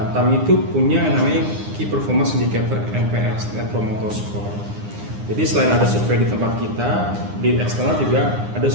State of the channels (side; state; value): left; late; 9.8 ms